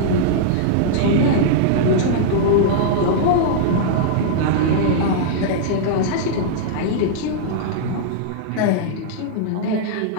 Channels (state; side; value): different; both; correlation -0.02